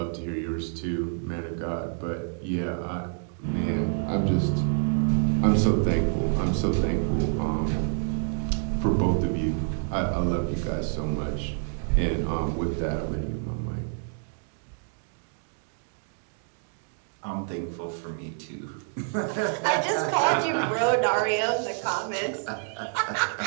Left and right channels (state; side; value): silent; left; 60 dB below the other